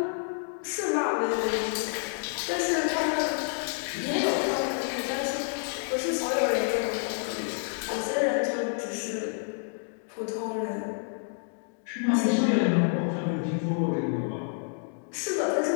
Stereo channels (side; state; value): right; silent; 59 dB below the other